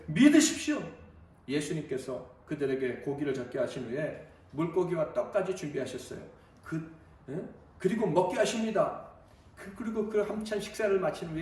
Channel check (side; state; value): both; identical; correlation 1.00